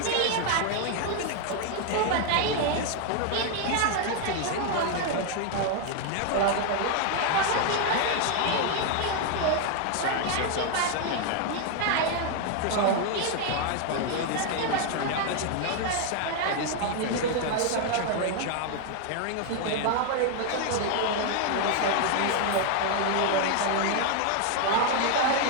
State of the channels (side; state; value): both; different; correlation 0.00